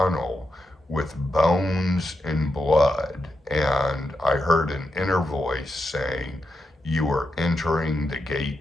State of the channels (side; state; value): both; normal; correlation 0.86